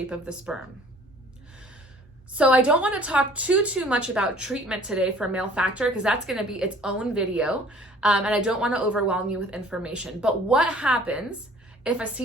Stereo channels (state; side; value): normal; both; correlation 0.52